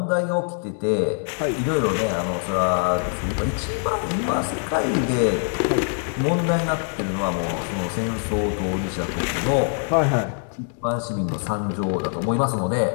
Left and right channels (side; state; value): right; silent; 55 dB below the other